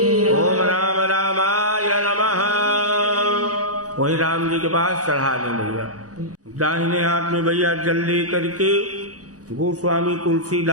ओम राम रामाय नमः। वही राम जी के पास चढ़ा दें भैया। दाहिने हाथ में भैया जल ले करके गोस्वामी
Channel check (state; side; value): late; left; 0.67 ms